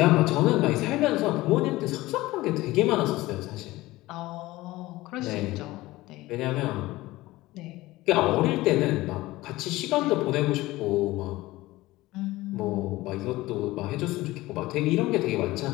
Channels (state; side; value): quieter; right; 18.5 dB